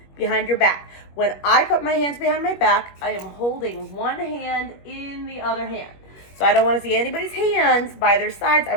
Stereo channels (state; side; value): late; right; 21 ms